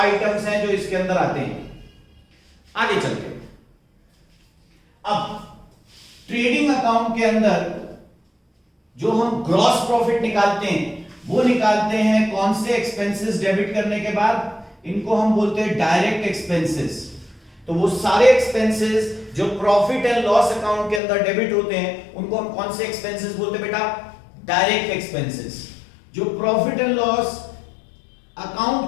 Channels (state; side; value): drops out; right; at 21.0 s